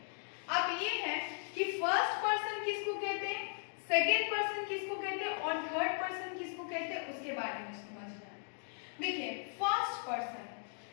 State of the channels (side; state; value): right; silent; 53 dB below the other